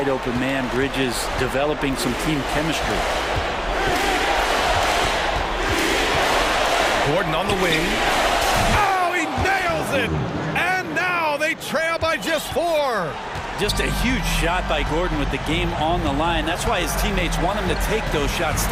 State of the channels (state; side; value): identical; both; correlation 1.00